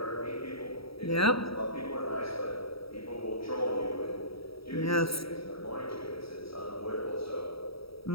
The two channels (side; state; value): right; late; 0.76 ms